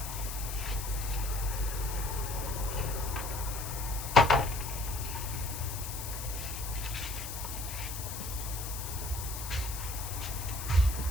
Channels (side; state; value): left; noise; hiss, 7 dB below the sound